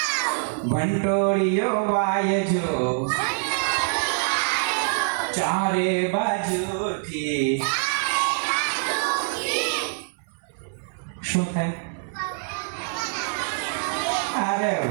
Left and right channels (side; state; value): left; silent; digital silence